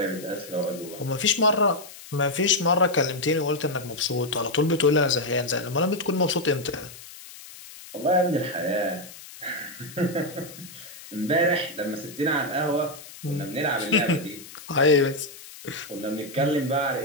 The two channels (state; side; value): noise; left; hiss, 17 dB below the sound